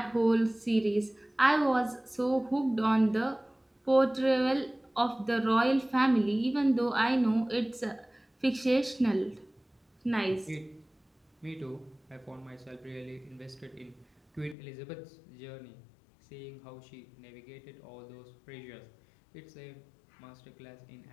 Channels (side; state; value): right; drops out; at 14.6 s